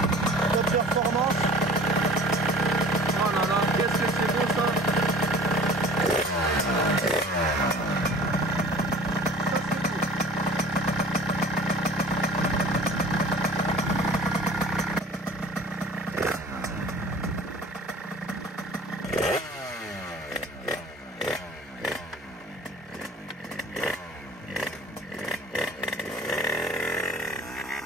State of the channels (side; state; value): both; normal; correlation 0.45